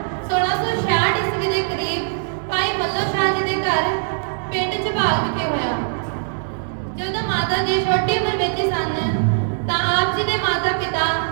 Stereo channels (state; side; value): silent; left; digital silence